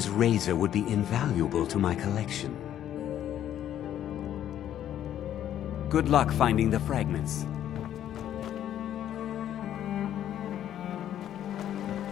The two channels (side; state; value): right; quieter; 11.0 dB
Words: razor would be invaluable to my collection. Good luck finding the fragments.